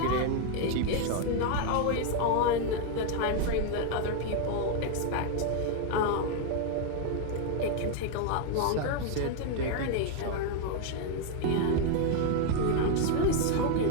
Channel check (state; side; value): different; both; correlation 0.01